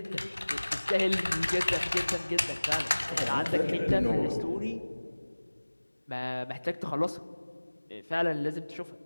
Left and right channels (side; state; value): both; inverted; correlation -1.00